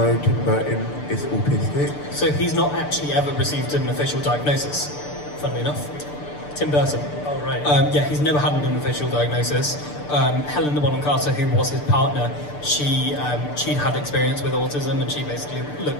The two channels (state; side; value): late; right; 6.8 ms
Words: Tim Burton is autistic? So he's not actually ever received an official diagnosis, funnily enough. Tim Burton. Oh, right. He's never had an official diagnosis. Helen Bonham Carter, who was his partner, she'd had experience with autism, and she basically